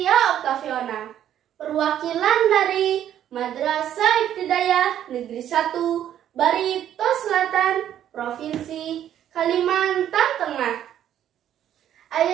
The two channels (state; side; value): quieter; left; 10.8 dB